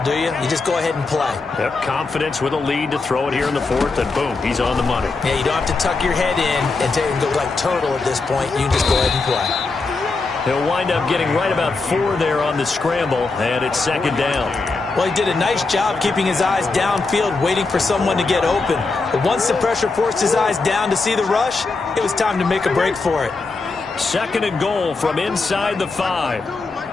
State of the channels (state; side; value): quieter; right; 3.9 dB